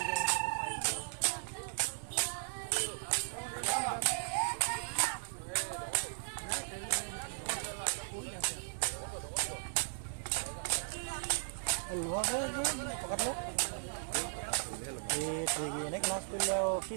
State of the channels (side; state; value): left; silent; digital silence